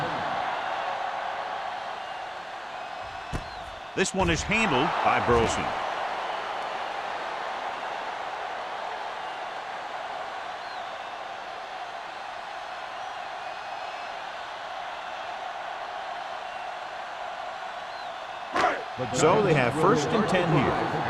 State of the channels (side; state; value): both; identical; correlation 1.00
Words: This one is handled by Burleson. So they have first and 10 here.